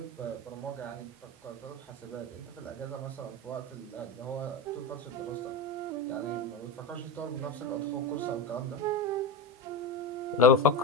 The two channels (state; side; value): normal; both; correlation 0.18